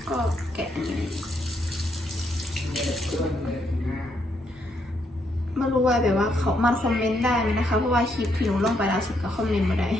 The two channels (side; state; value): both; normal; correlation 0.75